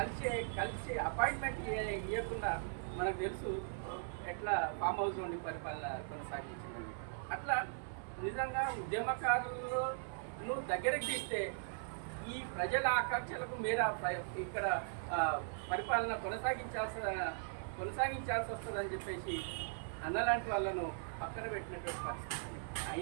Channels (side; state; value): left; silent; 51 dB below the other